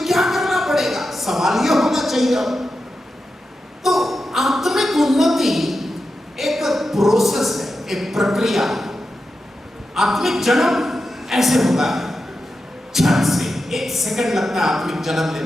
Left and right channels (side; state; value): both; normal; correlation 0.90